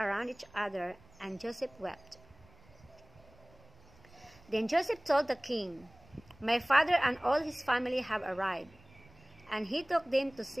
each other, and Joseph wept. Then Joseph told the king, "My father and all his family have arrived," and he took them to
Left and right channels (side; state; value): right; noise; rumble, 26 dB below the sound